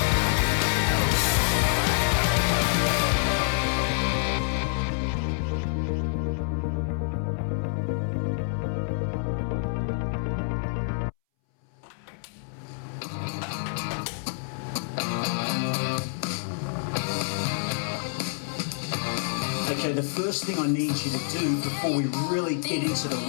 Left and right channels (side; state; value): right; silent; 60 dB below the other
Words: Okay, the first thing I need you to do before we really get into the